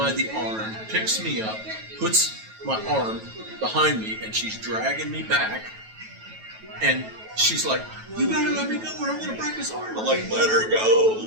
the arm, picks me up, puts my arm behind me, and she's dragging me back. And she's like, you better let me go or I'm going to break his arm. I'm like, let her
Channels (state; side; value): late; left; 9.2 ms